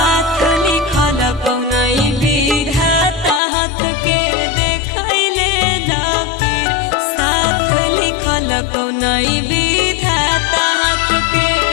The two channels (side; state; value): right; drops out; at 3.4 s